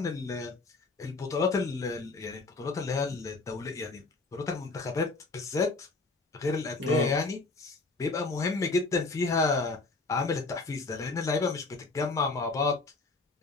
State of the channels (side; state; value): right; quieter; 3.6 dB